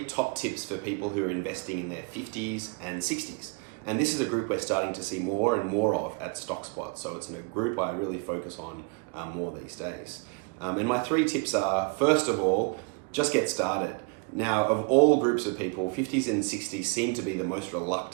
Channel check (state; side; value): quieter; left; 32.6 dB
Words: top tips for people who are investing in their 50s and 60s. And this is a group we're starting to see more and more of at StockSpot. So it's in a group I really focus on more these days. And my 3 tips are, first of all, just get started. Now, of all groups of people, 50s and 60s seem to be the most